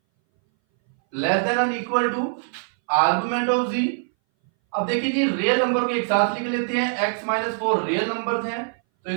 less than and equal to argument of z। अब देखिए जी रियल नंबर को एक साथ लिख लेते हैं, x - 4 रियल नंबर्स हैं, तो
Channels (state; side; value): silent; left; 60 dB below the other